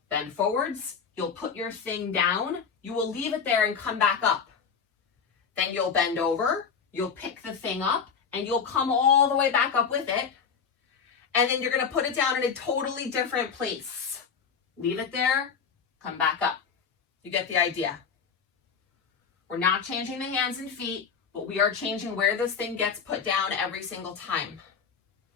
bend forwards, you'll put your thing down, you will leave it there and come back up. Then you'll bend over, you'll pick the thing up, and you'll come all the way back up with it. And then you're going to put it down in a totally different place. Leave it there, come back up. You get the idea. We're not changing the hands and feet, but we are changing where this thing gets put down every single time.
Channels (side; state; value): right; quieter; 6.3 dB